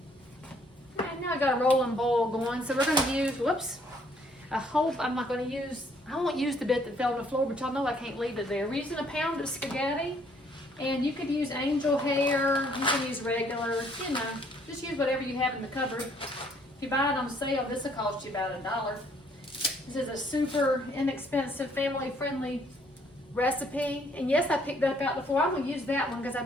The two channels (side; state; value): both; normal; correlation 0.65